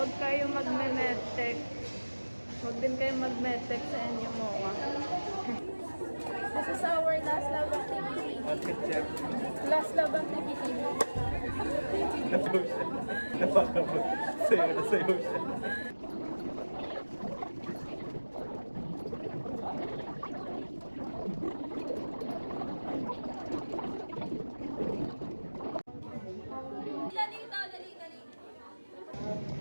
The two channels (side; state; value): both; inverted; correlation -1.00